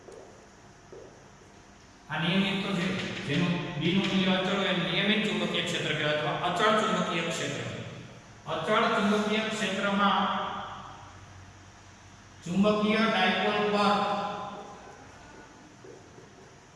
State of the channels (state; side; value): identical; both; correlation 1.00